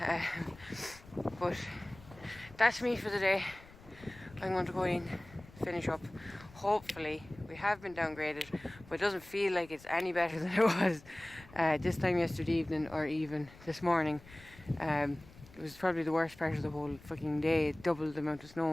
But that's me for the day. I'm going to go in, finish up. Hopefully, we have been downgraded, but it doesn't feel like it's any better than it was this time yesterday evening or even this morning. It was probably the worst part of the whole fucking day. It doubled the amount of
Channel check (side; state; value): left; noise; rumble, 21 dB below the sound